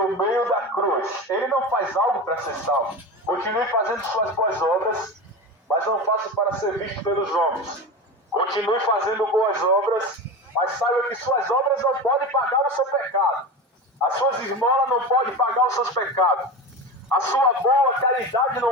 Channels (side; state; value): both; normal; correlation 0.26